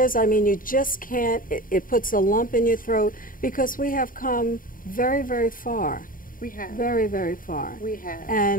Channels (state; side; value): late; right; 0.40 ms